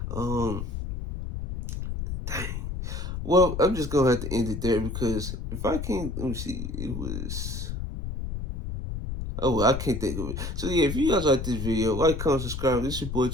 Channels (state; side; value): noise; left; rumble, 5 dB below the sound